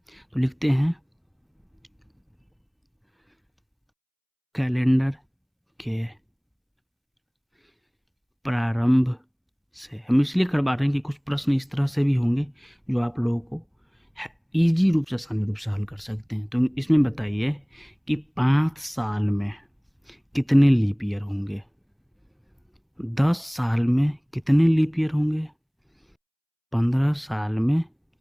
तो लिखते हैं कैलेंडर के प्रारंभ से। हम इसलिए करवा रहे हैं कि कुछ प्रश्न इस तरह से भी होंगे जो आप लोगों को इजी रूप से, आसानी रूप से हल कर सकते हैं। तो इसमें बताइए कि 5 साल में कितने लीप ईयर होंगे, 10 साल में कितने लीप ईयर होंगे, 15 साल में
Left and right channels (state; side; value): identical; both; correlation 1.00